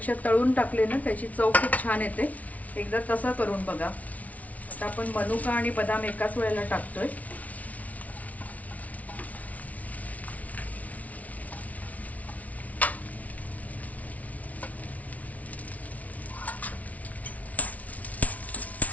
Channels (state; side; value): late; right; 0.070 ms